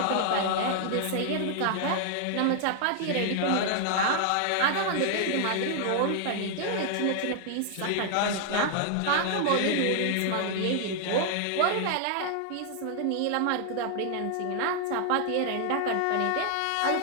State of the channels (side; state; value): both; different; correlation 0.00